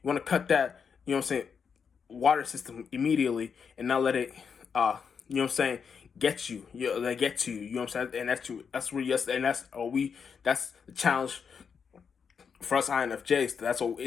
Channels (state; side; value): quieter; right; 6.4 dB